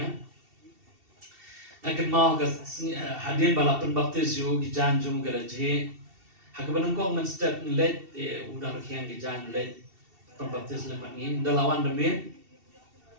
Akan mau ke hadian balapan baptis yo gijan jum geraji. Hakaban kong menstep let udah kian gijan let pembaptis lemat ni dalawan demi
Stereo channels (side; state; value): left; late; 2.7 ms